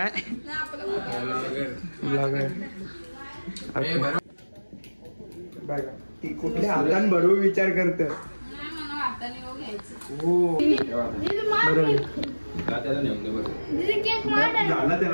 ब्लॉगर ती कुठल्या हातान भरू विचार करत. हो झाला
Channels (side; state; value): both; inverted; correlation -1.00